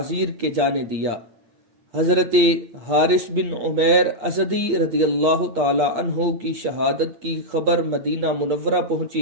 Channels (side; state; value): left; late; 8.4 ms